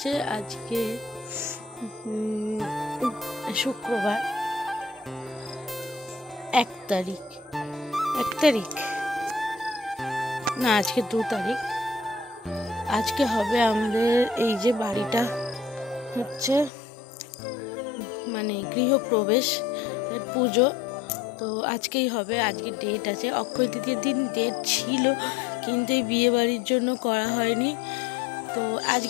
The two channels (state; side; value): drops out; right; at 16.7 s